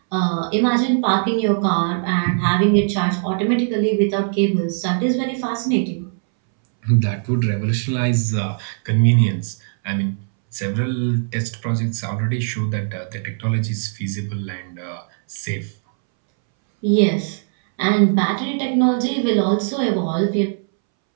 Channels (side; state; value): left; silent; 64 dB below the other